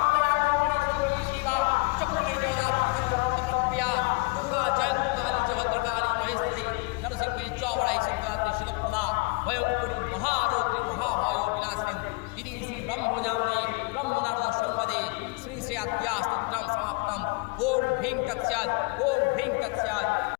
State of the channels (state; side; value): quieter; right; 27.9 dB